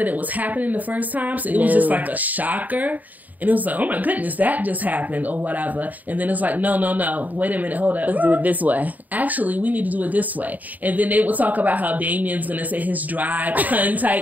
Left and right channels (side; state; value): left; late; 0.080 ms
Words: it was happening the first time, so it was just like a shocker. And it was like, oh my goodness, that just happened or whatever. And then it's like, no. Wait a minute, hold up. Let's do it this way. Actually, we need to do it this way. And then they would talk about how Damien's going to say his dry pun